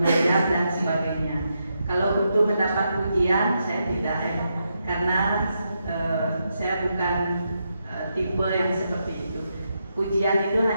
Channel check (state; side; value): inverted; both; correlation -0.83